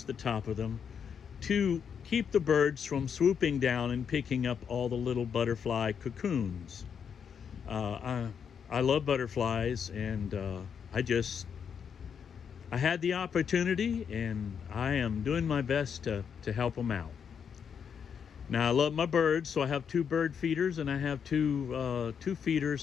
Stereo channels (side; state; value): right; quieter; 7.2 dB